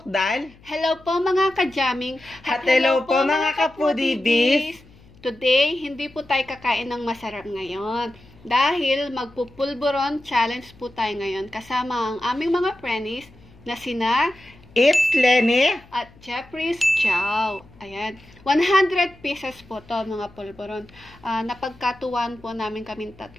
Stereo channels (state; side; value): noise; left; hum, 25 dB below the sound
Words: Hello po mga ka-jamming. At hello po mga kapudibis. Today, hindi po tayo kakain ng masarap ngayon. Dahil magpupulburon challenge po tayo ngayon kasama ang aming mga friends na sina It's Lenny at Jeffrey's Chow. Ayan. 100 pieces po to mga pulburon. Napagkatuwan po namin kaming